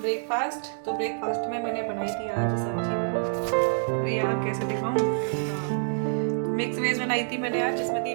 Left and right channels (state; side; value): silent; left; digital silence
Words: ब्रेकफास्ट। तो ब्रेकफास्ट में मैंने बनाई थी आज सब्जी। अरे यार कैसे दिखाऊँ, तो मिक्स वेज बनाई थी मैंने आज, जिसमें थी